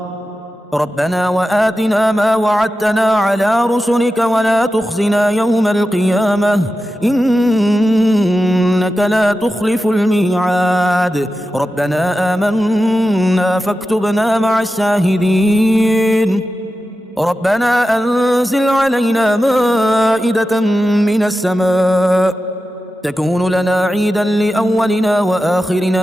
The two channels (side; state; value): both; normal; correlation 0.92